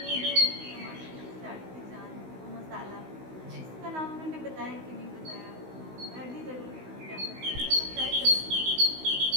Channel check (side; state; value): left; late; 16 ms